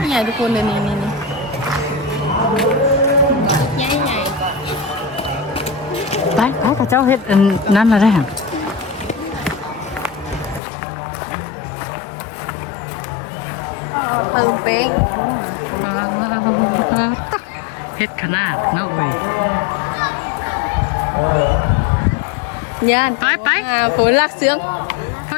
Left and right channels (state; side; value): drops out; right; at 10.6 s